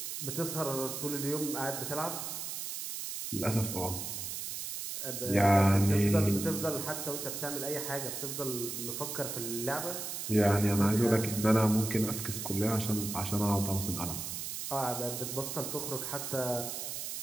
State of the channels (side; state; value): right; noise; hiss, 5 dB below the sound